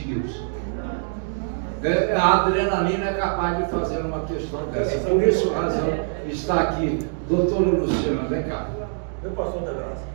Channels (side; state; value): left; silent; digital silence